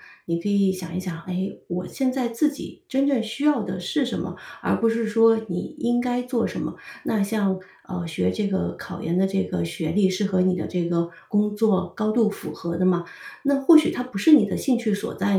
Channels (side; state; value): both; identical; correlation 1.00